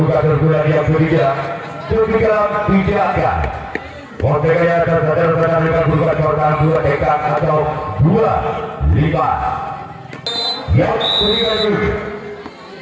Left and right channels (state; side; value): identical; both; correlation 1.00